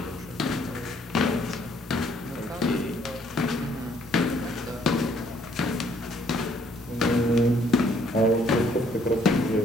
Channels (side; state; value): both; normal; correlation 0.65